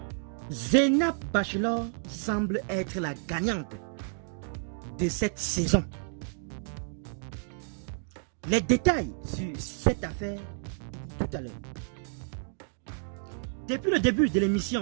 Zénab Bachelor semble être la gagnante de cette saison. Les détails sur cette affaire tout à l'heure. Depuis le début de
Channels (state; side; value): silent; left; digital silence